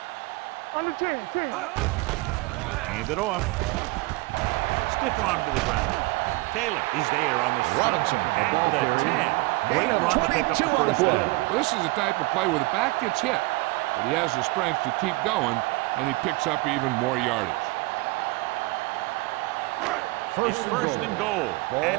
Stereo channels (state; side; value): quieter; left; 23.2 dB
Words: On the 10. Hand it off. Stiff arm to the ground. Taylor is there on the stop at the 10. Great run to pick up the first down. This is the type of play where the back gets hit, but he has the strength to keep going, and he picks up even more yardage. It's first and goal at